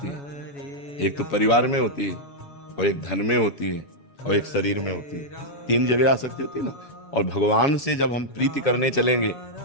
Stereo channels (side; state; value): right; late; 7.1 ms